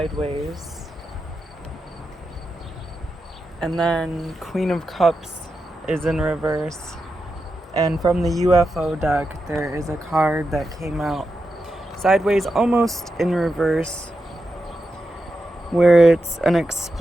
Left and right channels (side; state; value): both; normal; correlation 0.88